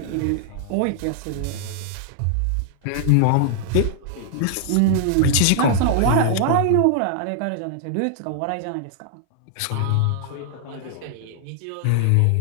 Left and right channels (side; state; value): both; different; correlation -0.01